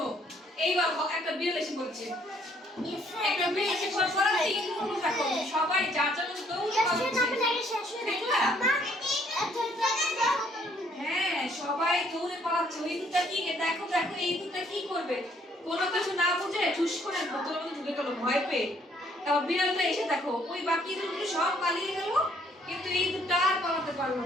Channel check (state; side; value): normal; both; correlation 0.65